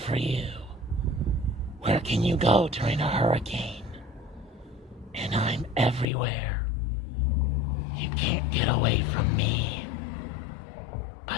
you. Where can you go during a hurricane? And I'm everywhere. You can't get away from me.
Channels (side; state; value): right; drops out; at 6.1 s